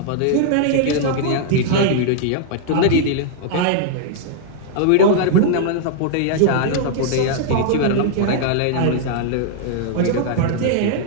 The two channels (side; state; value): both; different; correlation -0.01